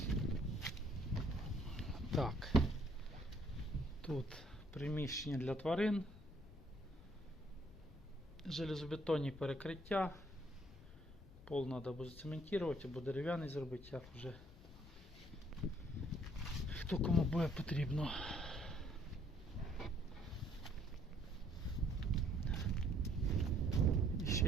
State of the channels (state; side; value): normal; both; correlation 0.64